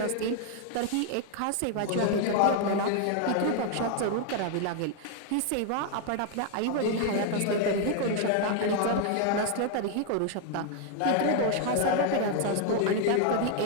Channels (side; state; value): both; different; correlation 0.00